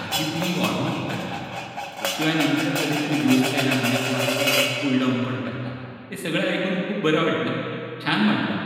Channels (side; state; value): both; identical; correlation 1.00